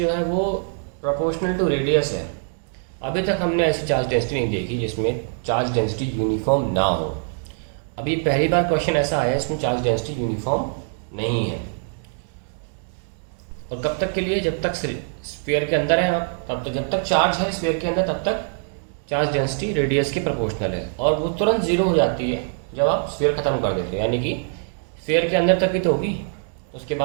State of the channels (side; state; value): left; silent; digital silence